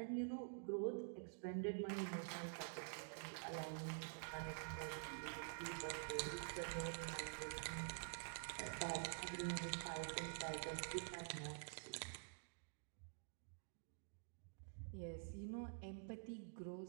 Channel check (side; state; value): left; silent; digital silence